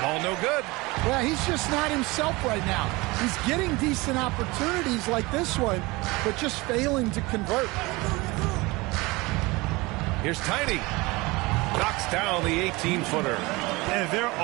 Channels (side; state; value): left; quieter; 23.1 dB